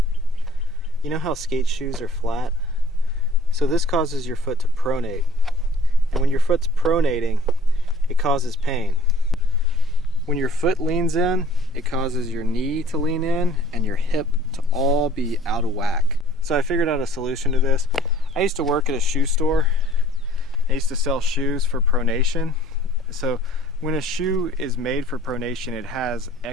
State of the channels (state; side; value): normal; both; correlation 0.54